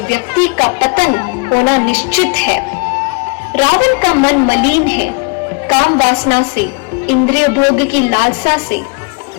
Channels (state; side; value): quieter; right; 33.0 dB